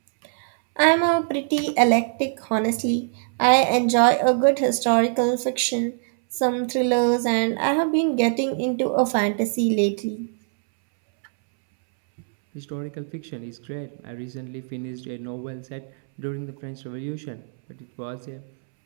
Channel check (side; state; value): left; silent; 63 dB below the other